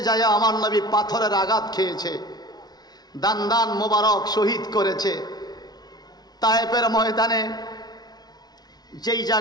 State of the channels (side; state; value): right; late; 0.19 ms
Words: যায় আমার নবী পাথরের আঘাত খেয়েছে, দান দান মোবারক শহীদ করেছে। তায়েফের ময়দানে যেই